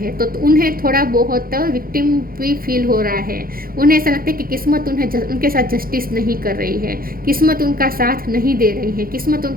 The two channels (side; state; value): left; late; 0.42 ms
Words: तो उन्हें थोड़ा बहुत विक्टिम भी फील हो रहा है। उन्हें ऐसा लगता है कि किस्मत उनके साथ जस्टिस नहीं कर रही है, किस्मत उनका साथ नहीं दे रही है, किस्मत